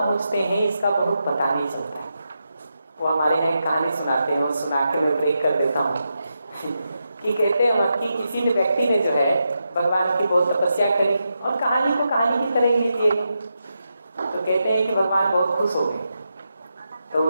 हैं इसका बहुत पता नहीं चलता है। वो हमारे यहाँ एक कहानी सुनाते हैं, और सुना के मैं ब्रेक कर देता हूँ कि कहते हैं कि किसी ने व्यक्ति ने जो है भगवान की बहुत तपस्या करी, और कहानी को कहानी की तरह लीजिए, तो कहते हैं कि भगवान बहुत खुश हो गए। तो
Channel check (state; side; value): inverted; both; correlation -0.86